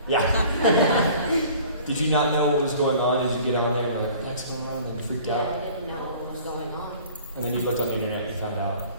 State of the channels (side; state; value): both; inverted; correlation -0.49